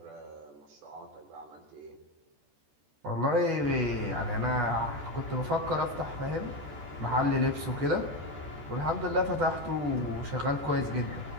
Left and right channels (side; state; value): left; late; 14 ms